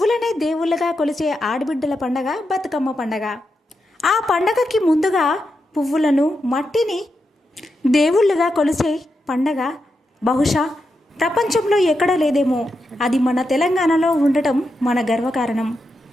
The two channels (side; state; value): both; normal; correlation 0.86